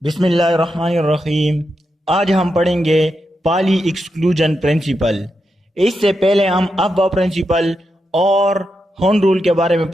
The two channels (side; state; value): both; normal; correlation 0.86